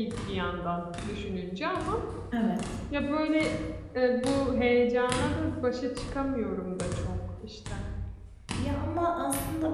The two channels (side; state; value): both; identical; correlation 1.00